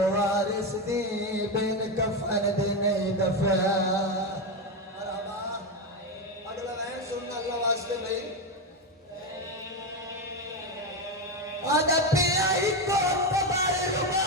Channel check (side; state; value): both; normal; correlation 0.12